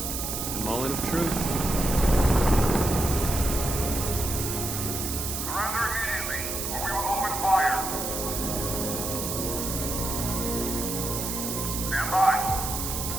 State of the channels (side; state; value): right; noise; hiss, 4 dB below the sound